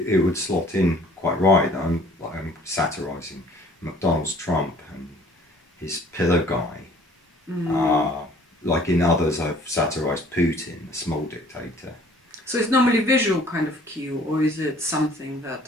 would slot in quite right. I'm satirising McDonald's Trump and his pillar guy. Like in others, I've satirised Putin, the small dictator. So it's normally visual kind of cue, or is it something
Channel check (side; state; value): both; normal; correlation 0.55